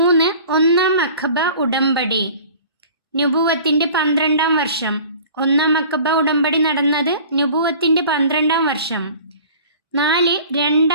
ഒന്നാം അഖബ ഉടമ്പടി. നുബുവത്തിൻ്റെ 12ാം വർഷം. ഒന്നാം അഖബ ഉടമ്പടി നടന്നത് നുബുവത്തിൻ്റെ 12ാം വർഷം. 4,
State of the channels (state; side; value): inverted; both; correlation -0.45